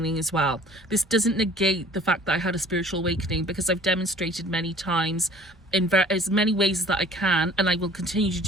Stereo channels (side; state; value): both; normal; correlation 0.50